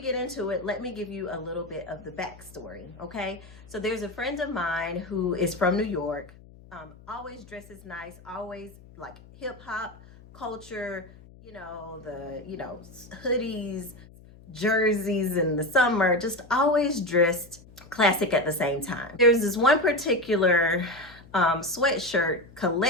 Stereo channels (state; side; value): noise; left; hum, 22 dB below the sound